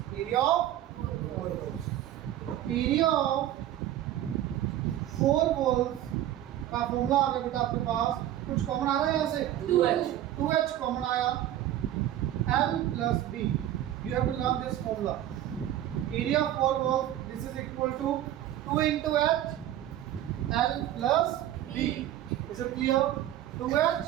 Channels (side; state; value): left; quieter; 12.5 dB